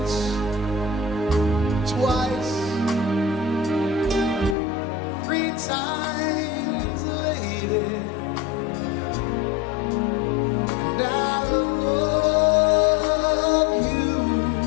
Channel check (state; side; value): drops out; right; at 4.5 s